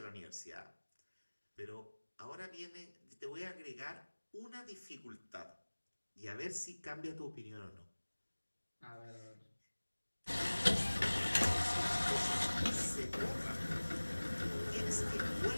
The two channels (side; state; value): both; inverted; correlation -1.00